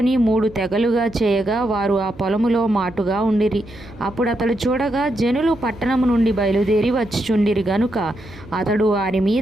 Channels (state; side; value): noise; right; hum, 20 dB below the sound